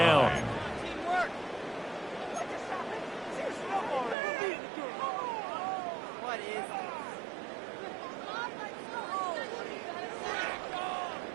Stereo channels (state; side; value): drops out; left; at 4.2 s